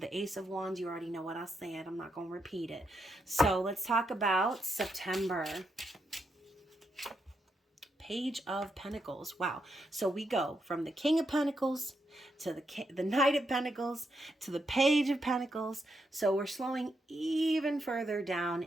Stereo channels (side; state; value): both; normal; correlation 0.82